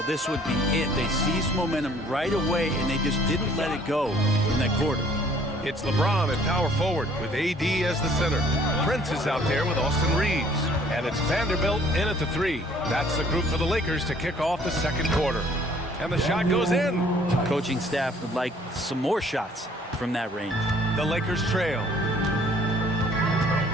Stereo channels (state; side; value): normal; both; correlation 0.58